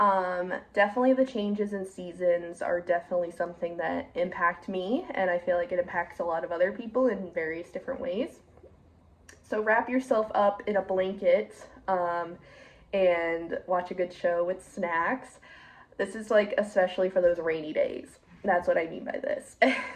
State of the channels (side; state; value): both; identical; correlation 1.00